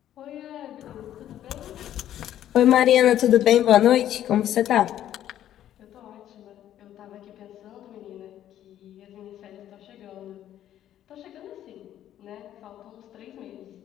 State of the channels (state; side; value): quieter; right; 11.6 dB